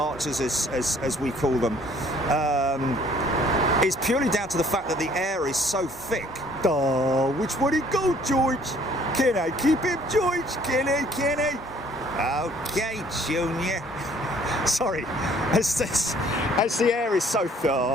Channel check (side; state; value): both; normal; correlation 0.59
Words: as we call them, is purely down to the fact that the air is so thick. Oh, which way to go, George? Can I keep him, George? Can I? Okay, Junior. Sorry, as the air is so thick.